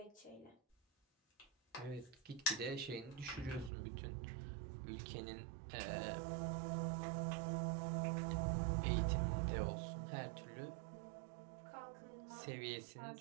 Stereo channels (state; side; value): drops out; left; at 3.7 s